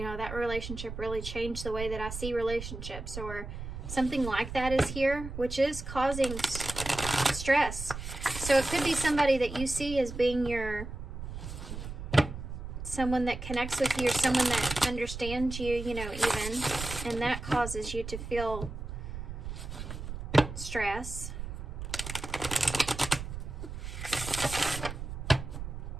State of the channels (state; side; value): noise; right; rumble, 8 dB below the sound